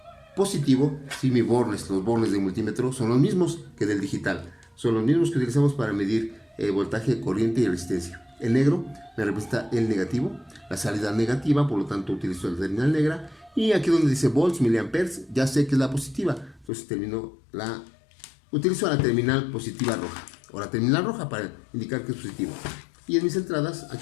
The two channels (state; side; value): drops out; right; at 16.7 s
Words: Positivo, si los bornes de multímetro son los mismos que del digital, son los mismos que utilizamos para medir voltaje, corriente y resistencia. El negro me representa el negativo, la salida negativa, por lo tanto utilizo la terminal negra. Y aquí donde dice volts, miliamperes, ya sé que es la positiva, entonces utilizo la terminal positiva roja, o la terminal roja para indicar que es positivo. Y en mis entradas,